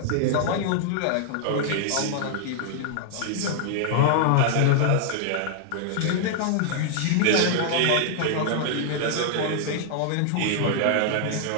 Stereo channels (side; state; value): both; different; correlation -0.01